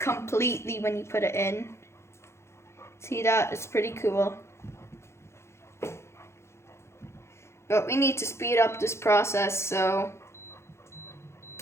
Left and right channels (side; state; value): right; late; 0.13 ms